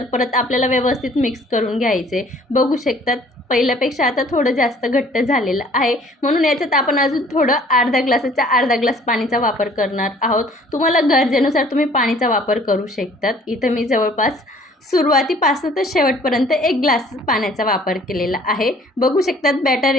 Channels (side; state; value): both; normal; correlation 0.55